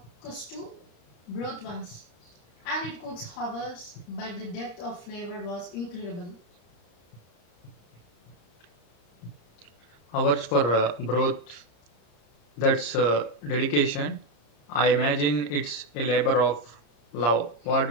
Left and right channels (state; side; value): late; right; 34 ms